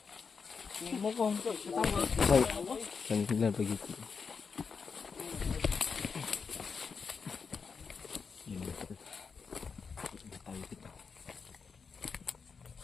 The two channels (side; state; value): right; quieter; 5.5 dB